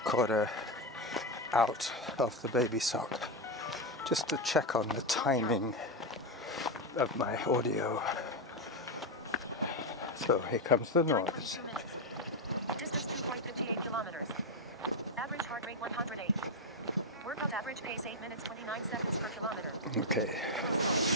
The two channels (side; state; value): both; normal; correlation 0.07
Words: out of the baby sock just to check on the timing of my audio. So here comes the Time noise. 42 minutes. Distance 2.58 kilometers. Average heart rate 108. Workout average pace 8 minutes 29 seconds per kilometer. Okay.